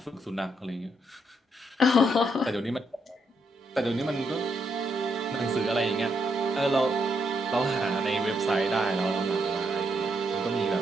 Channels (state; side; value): normal; both; correlation 0.77